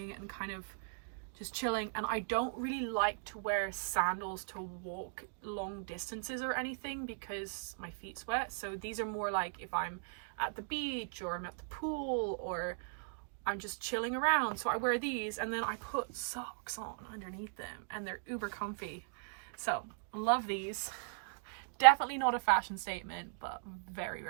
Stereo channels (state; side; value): silent; left; digital silence